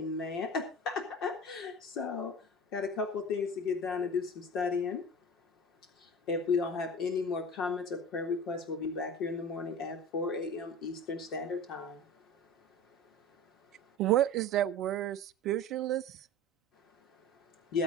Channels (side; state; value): both; normal; correlation 0.34